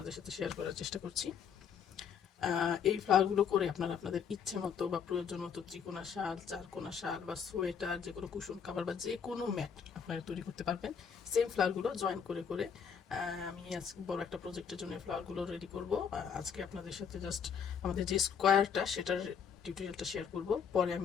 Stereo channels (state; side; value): quieter; right; 7.2 dB